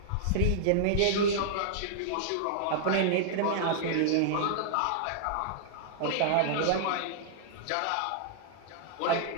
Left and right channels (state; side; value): different; both; correlation -0.01